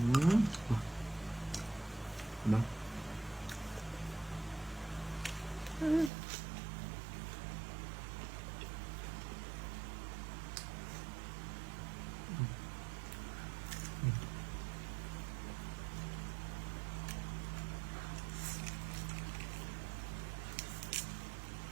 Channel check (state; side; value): drops out; left; at 6.1 s